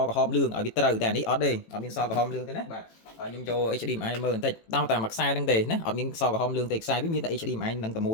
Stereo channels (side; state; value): right; late; 18 ms